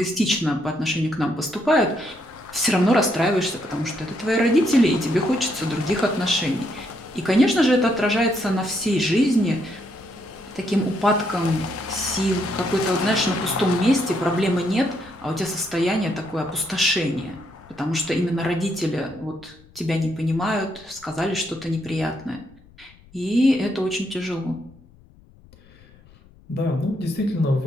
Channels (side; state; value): left; noise; rumble, 26 dB below the sound